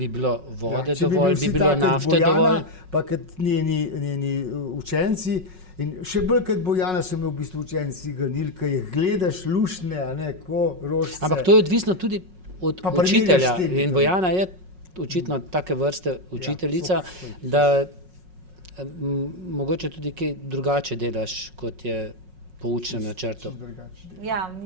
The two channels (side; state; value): left; late; 5.4 ms